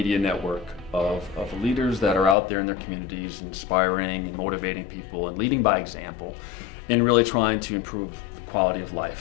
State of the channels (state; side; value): drops out; right; at 2.4 s